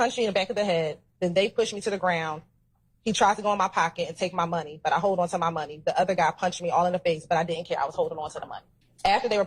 you in the back of the head. Then they pushed me to the ground. He tried to go in my pocket and take my money, but I hold on to my money. The other guy punched me all in the face, but I didn't care. I was holding on to the money. After they were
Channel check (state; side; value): identical; both; correlation 1.00